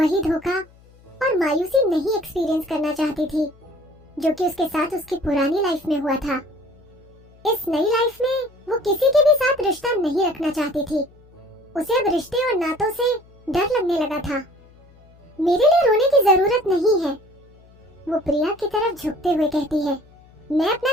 धोखा और मायूसी नहीं एक्सपीरियंस करना चाहती थी जो कि उसके साथ उसकी पुरानी लाइफ में हुआ था। इस नई लाइफ में वो किसी के भी साथ रिश्ता नहीं रखना चाहती थी। उसे अब रिश्ते और नातों से डर लगने लगा था। मेरे लिए रोने की जरूरत नहीं है, वो प्रिया की तरफ झुकते हुए कहती है। मैं अपना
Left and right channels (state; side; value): noise; left; hum, 27 dB below the sound